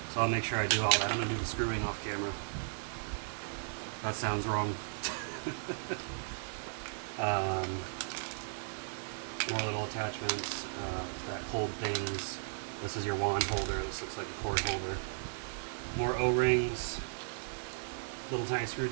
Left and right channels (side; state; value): left; silent; digital silence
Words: So I'll make sure I do all that. I'm gonna do the screwing off camera. That sounds wrong. More little attachments that hold things. This is your wand holder. This looks like a cord holder. More O-rings. Little tiny